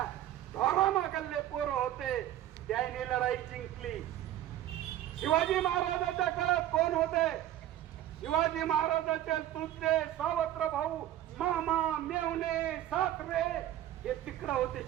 ढोरा मागल्ले पोरं होते, त्यांनी लढाई जिंकली. शिवाजी महाराजाच्या काळात कोण होते? शिवाजी महाराजाचे तुझे सावत्र भाऊ मामा मेवणे सासरे हे तिकडं होते,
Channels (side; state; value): left; quieter; 12.8 dB